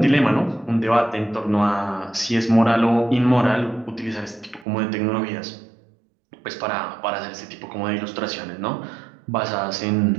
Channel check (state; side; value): drops out; left; at 4.7 s